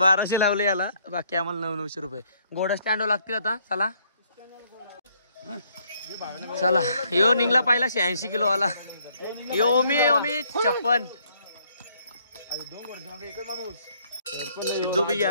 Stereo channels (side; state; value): both; inverted; correlation -0.68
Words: लावले याला. बाकी आम्हाला 900 रुपये. घोडा स्टँड लागतील आता. चला चला. यो निघला पाहिला 86 किलो वाला. यो ओमी ओमी 56. सिद्धू भी